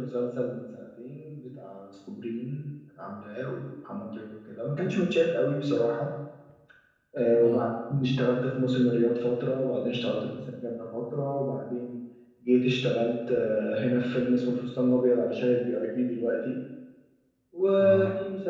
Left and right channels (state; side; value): identical; both; correlation 1.00